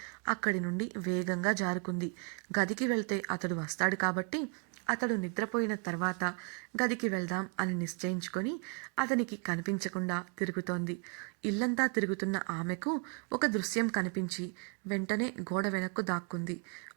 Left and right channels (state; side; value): quieter; left; 36.1 dB